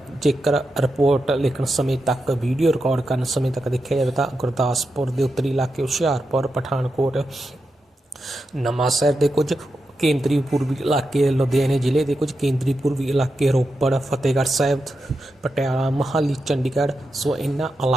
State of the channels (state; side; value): normal; both; correlation 0.88